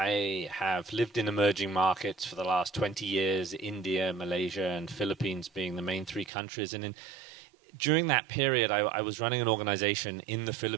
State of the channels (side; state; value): left; drops out; at 6.3 s